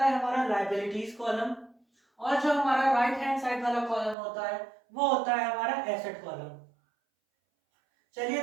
हमारा लायबिलिटीज कॉलम, और जो हमारा राइट हैंड साइड वाला कॉलम होता है वो होता है हमारा एसेट कॉलम। चलिए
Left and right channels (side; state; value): left; drops out; at 4.2 s